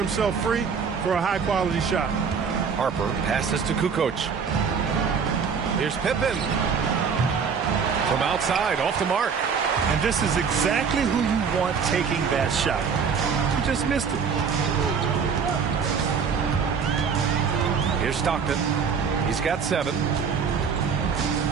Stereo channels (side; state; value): left; quieter; 6.2 dB